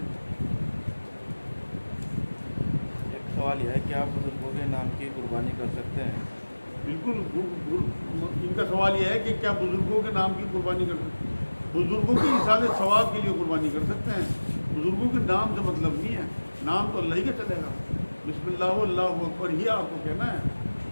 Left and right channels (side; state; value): both; inverted; correlation -1.00